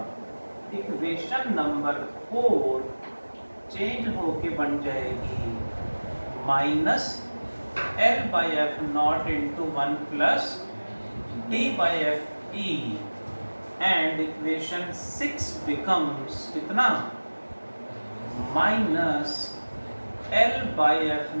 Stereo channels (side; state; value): both; inverted; correlation -1.00